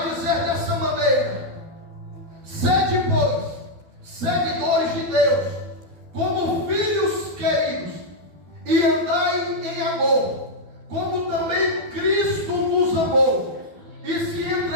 dizer dessa maneira: sede, pois, seguidores de Deus, como filhos queridos, e andai em amor, como também Cristo nos amou, e se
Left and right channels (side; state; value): left; late; 12 ms